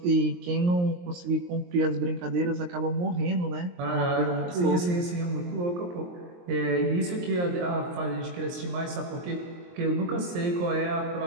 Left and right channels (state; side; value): late; left; 23 ms